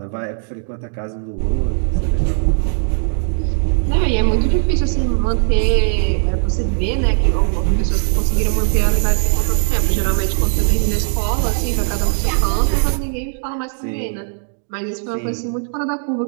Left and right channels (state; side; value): silent; left; 62 dB below the other